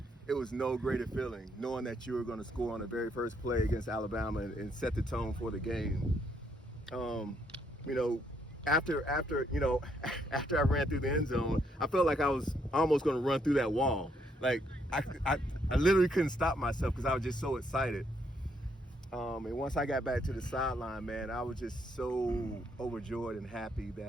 it was no greater feeling knowing that you were going to score on the very first play against Alabama and set the tone for the game. After I ran through the end zone, I felt like I was almost going to run through that wall. Like I literally couldn't stop myself because I was just so excited. And once I got back to the sideline, man, I was just so overjoyed and happy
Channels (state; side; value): normal; both; correlation 0.73